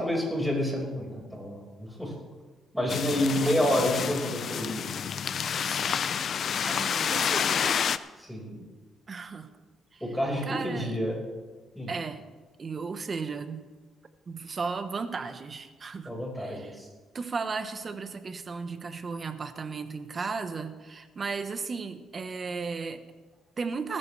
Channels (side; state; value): both; normal; correlation 0.77